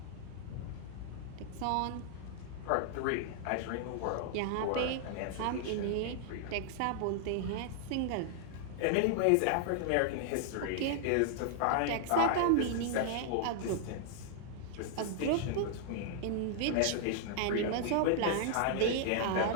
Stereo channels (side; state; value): both; different; correlation -0.01